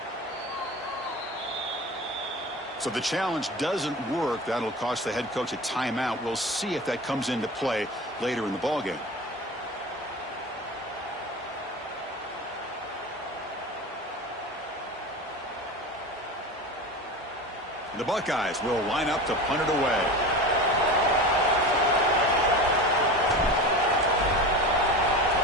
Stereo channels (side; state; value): both; normal; correlation 0.31